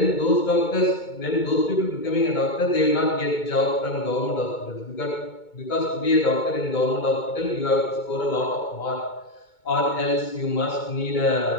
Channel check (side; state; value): right; late; 2.2 ms